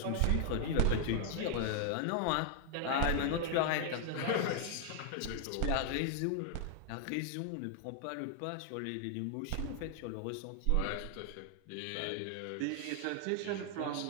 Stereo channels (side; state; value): both; different; correlation 0.00